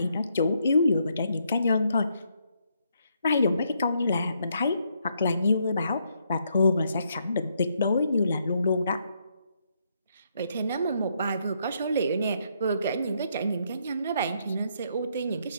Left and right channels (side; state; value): both; inverted; correlation -0.75